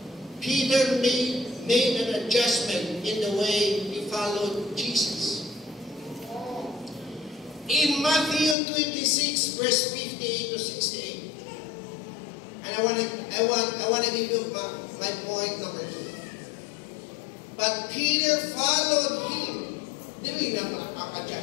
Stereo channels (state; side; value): drops out; right; at 8.6 s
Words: Peter made an adjustment in the way he followed Jesus. In Matthew 26, verse 58 to 68, and I want to give you my point number 2. But Peter followed him. Dili na